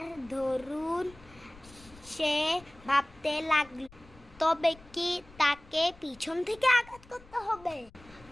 দরুন সে ভাবতে লাগলো, তবে কি তাকে পিছন থেকে আঘাত করতে হবে?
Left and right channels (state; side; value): noise; left; rumble, 23 dB below the sound